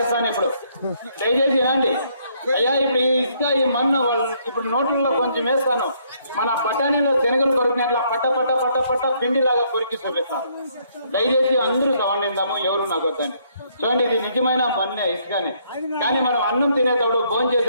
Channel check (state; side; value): inverted; both; correlation -0.69